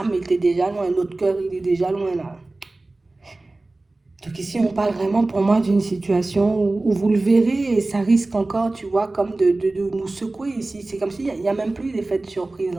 âme était déjà loin, notre cœur, il est déjà loin là. Donc ici, on parle vraiment pour moi d'une situation où vous le verrez et ça risque encore, tu vois, comme de nous secouer ici. C'est comme s'il y a même plus d'effet de surprise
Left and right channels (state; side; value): quieter; left; 3.0 dB